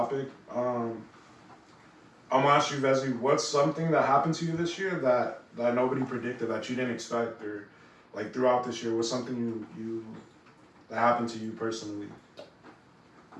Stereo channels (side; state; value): both; identical; correlation 1.00